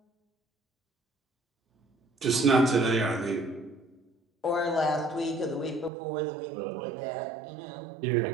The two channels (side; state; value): left; drops out; at 5.9 s